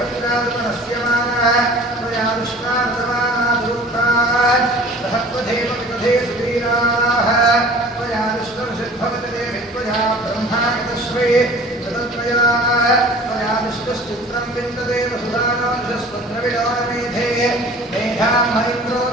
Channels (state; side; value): normal; both; correlation 0.45